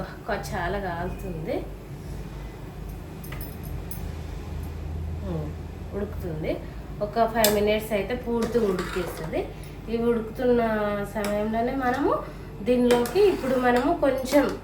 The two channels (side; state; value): both; identical; correlation 1.00